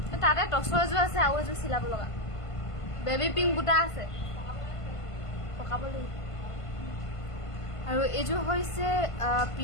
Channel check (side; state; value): right; late; 1.5 ms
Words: তাতে টছৰ এযোৰ আছে আৰু এযোৰ চিলাব লগা বেবী পিংক বুটা আছে পকাব লাগিব আৰু এযোৰ হৈছে